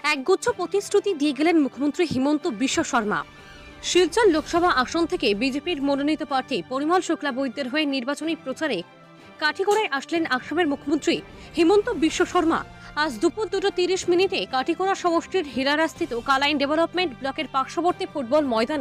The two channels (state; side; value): identical; both; correlation 1.00